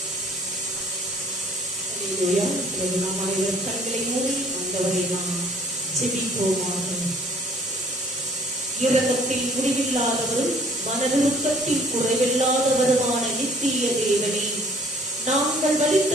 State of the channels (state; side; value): normal; both; correlation 0.56